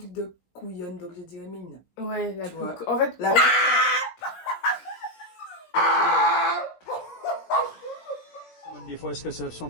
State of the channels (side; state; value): right; late; 17 ms